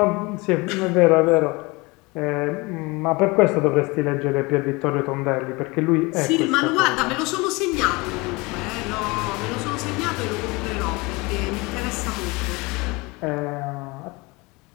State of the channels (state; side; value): quieter; right; 25.0 dB